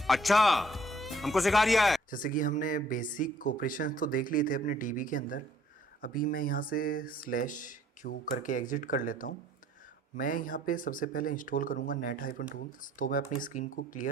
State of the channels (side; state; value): both; normal; correlation 0.60